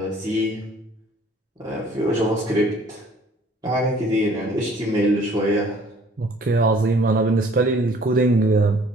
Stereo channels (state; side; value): normal; both; correlation 0.56